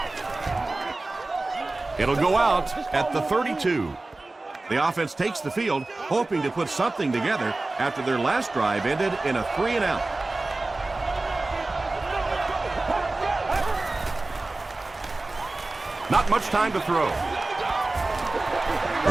It'll go out at the 32. The offense takes the field, hoping to put something together after their last drive ended in a 3-and-out. Not much time to throw.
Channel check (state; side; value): quieter; left; 3.1 dB